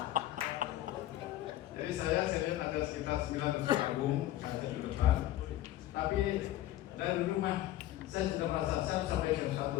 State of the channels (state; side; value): quieter; right; 14.2 dB